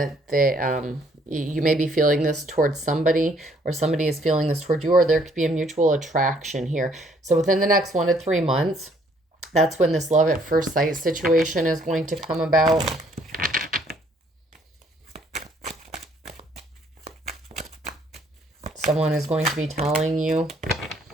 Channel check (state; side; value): normal; both; correlation 0.64